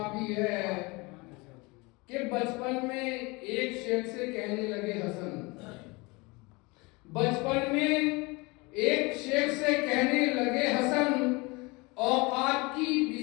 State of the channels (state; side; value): quieter; right; 25.7 dB